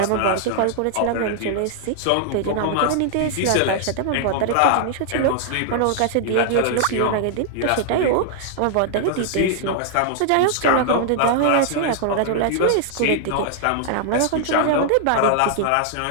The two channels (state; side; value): different; both; correlation -0.01